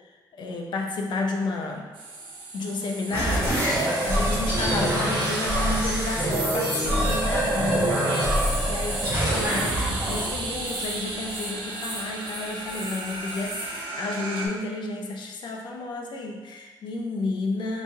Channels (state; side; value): normal; both; correlation 0.57